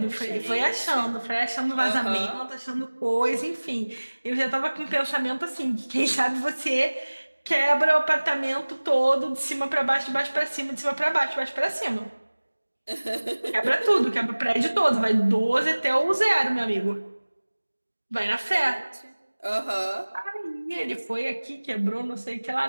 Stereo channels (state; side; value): inverted; both; correlation -1.00